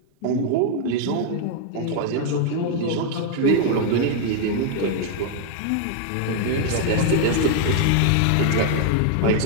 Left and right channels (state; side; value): different; both; correlation 0.00